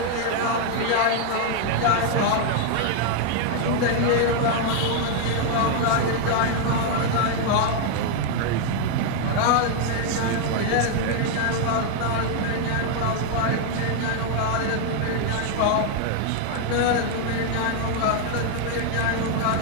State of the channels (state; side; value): different; both; correlation 0.00